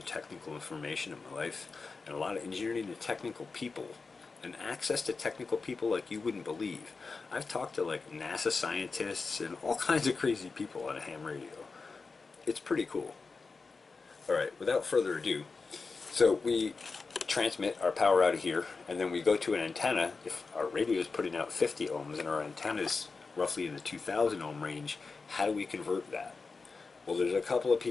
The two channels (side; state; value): right; quieter; 4.4 dB